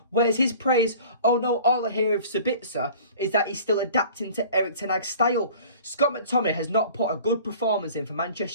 Where's his praise? Oh no, all I hear of Sabitzer is that he's still adapting to Erik ten Hag's style. Scott McTominay has not put a good performance in for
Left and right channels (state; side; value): inverted; both; correlation -0.45